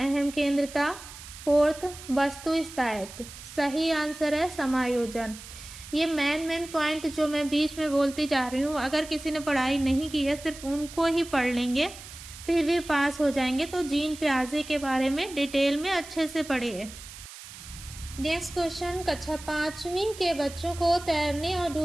केंद्रता, फोर्थ वस्तु स्थायित्व। सही आंसर है समायोजन। ये मेन पॉइंट जो मैं बीच में बोलती जा रही हूँ, अगर किसी ने पढ़ाई नहीं की है सिर्फ उनको ही पढ़ लेंगे, फिर भी पास हो जाएंगे। तो जीन पियाजे के बारे में डिटेल में अच्छे से पढ़िए। नेक्स्ट क्वेश्चन, कक्षा 5वीं के बच्चों को तैरने और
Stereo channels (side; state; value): right; noise; hiss, 15 dB below the sound